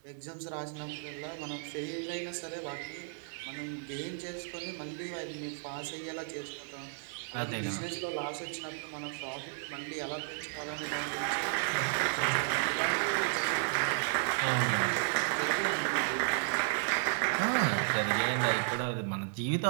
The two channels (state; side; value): silent; left; digital silence